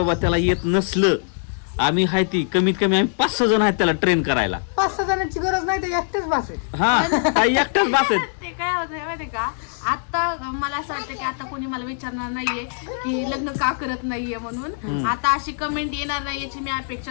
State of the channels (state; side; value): silent; right; digital silence